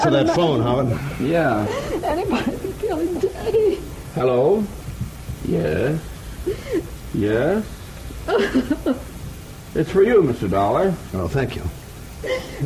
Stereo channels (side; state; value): both; identical; correlation 1.00